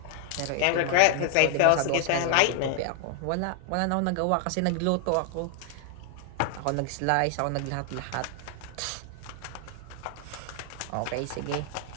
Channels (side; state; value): both; different; correlation 0.00